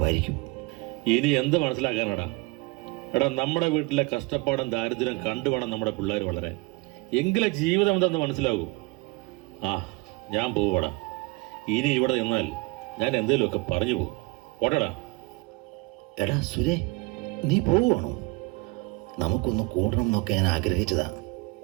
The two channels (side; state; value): left; quieter; 25.4 dB